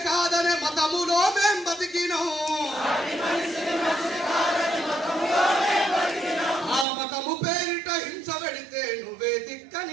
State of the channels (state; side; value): drops out; left; at 6.9 s